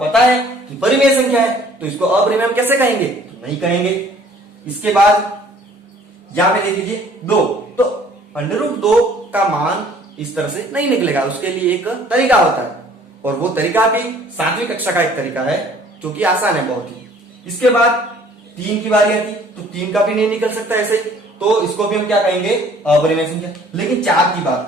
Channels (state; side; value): normal; both; correlation 0.55